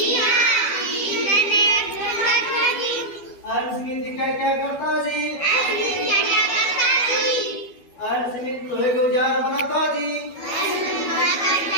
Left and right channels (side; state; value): right; late; 12 ms